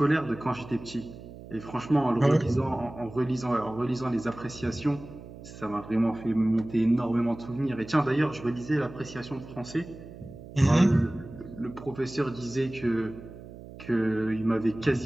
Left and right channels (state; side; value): noise; right; hum, 15 dB below the sound